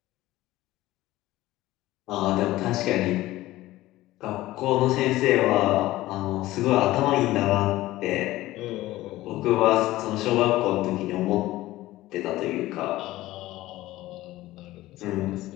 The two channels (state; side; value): quieter; right; 16.8 dB